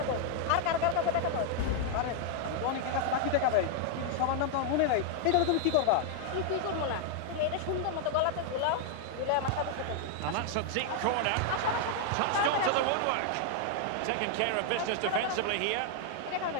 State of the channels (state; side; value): different; both; correlation 0.00